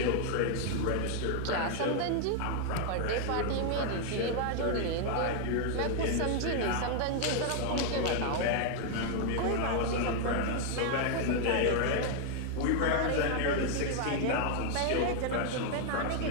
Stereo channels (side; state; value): both; different; correlation 0.00